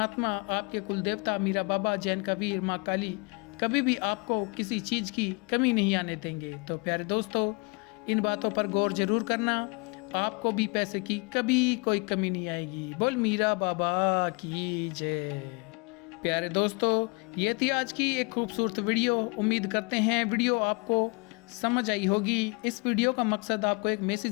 आपके कुल देवता मीरा बाबा, जैन कबीर, माँ काली कभी भी आपको किसी चीज़ की कमी नहीं आने देंगे। तो प्यारे दोस्तों, इन बातों पर गौर जरूर करना, आपको भी पैसे की कभी कोई कमी नहीं आएगी। बोल मीरा बाबा की जय। प्यारे दोस्तों, ये थी आज की एक खूबसूरत वीडियो। उम्मीद करते हैं वीडियो आपको समझ आई होगी। इस वीडियो का मकसद आपको एक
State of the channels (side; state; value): right; quieter; 30.7 dB